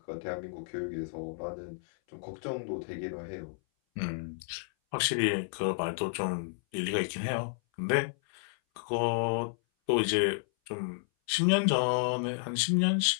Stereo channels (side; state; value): right; silent; 57 dB below the other